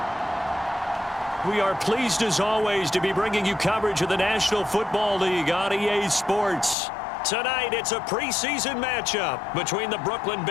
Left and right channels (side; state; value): right; drops out; at 6.8 s